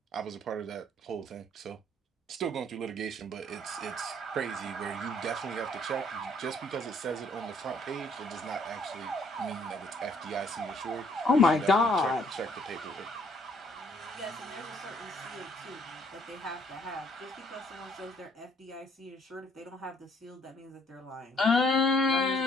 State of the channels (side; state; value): both; normal; correlation 0.64